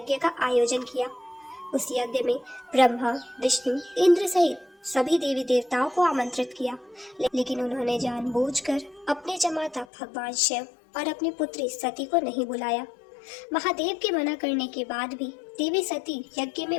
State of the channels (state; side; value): drops out; right; at 9.9 s